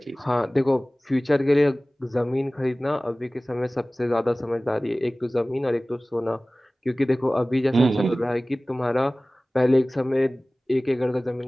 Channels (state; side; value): normal; both; correlation 0.98